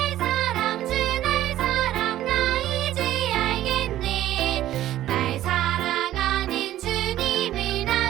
사랑 나 이제 알겠네. 날 사랑하는 주님을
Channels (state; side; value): quieter; left; 13.4 dB